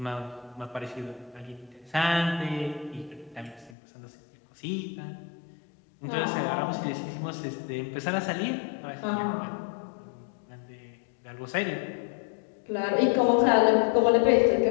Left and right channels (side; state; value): right; drops out; at 3.8 s